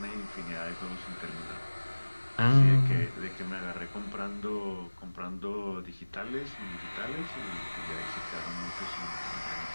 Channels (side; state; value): both; inverted; correlation -1.00